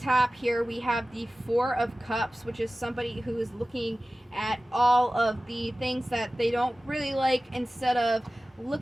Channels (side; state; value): both; normal; correlation 0.97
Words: here, we have the Four of Cups, which is somebody who is looking at all of the things that they don't really like, instead of